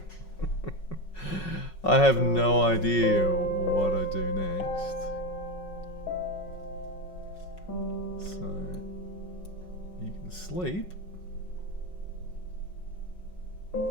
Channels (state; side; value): late; right; 5.4 ms